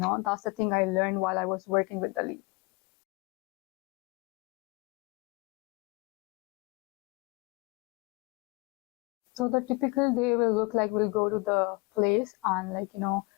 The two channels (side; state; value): right; quieter; 27.3 dB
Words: That's the thing I learned while I was working with the lead. So the typical day will look like we'll go to the place and, like,